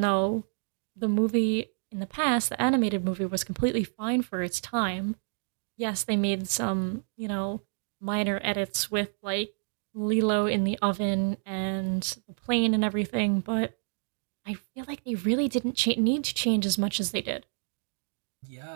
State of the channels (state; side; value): silent; left; 59 dB below the other